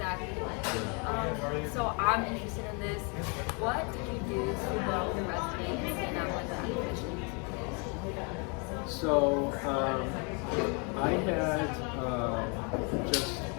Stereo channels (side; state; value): right; quieter; 34.1 dB